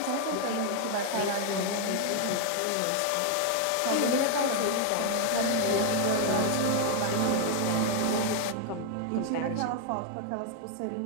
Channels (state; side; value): different; both; correlation 0.00